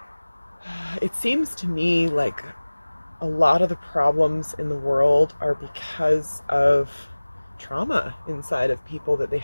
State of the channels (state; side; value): inverted; both; correlation -1.00